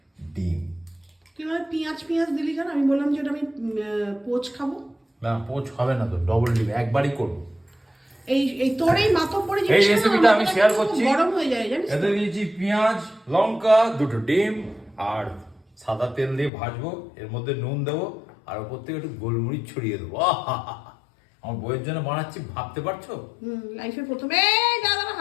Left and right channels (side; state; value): right; drops out; at 16.5 s